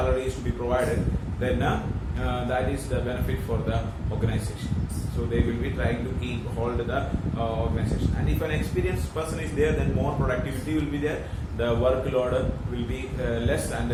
is to be provided, then that is the benefit for the organization. So they will be trying to keep hold the organization. And if an experienced person is there, then more productivity will be there. The workload will be less, and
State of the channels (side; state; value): both; identical; correlation 1.00